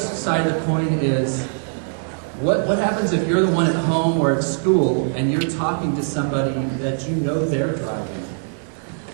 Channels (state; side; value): silent; left; 65 dB below the other